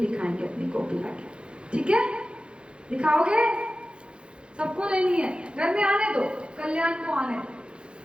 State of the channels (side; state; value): left; late; 0.055 ms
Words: अपनी कॉपी लाके, ठीक है? दिखाओगे? सबको लेनी है, घर में आने दो, कल्याण को आने दो,